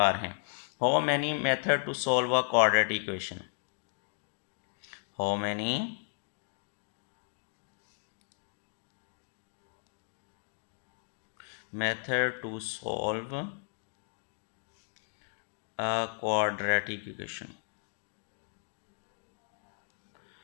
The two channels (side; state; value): right; silent; digital silence